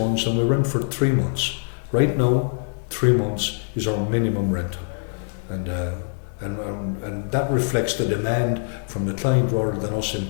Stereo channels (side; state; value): right; silent; digital silence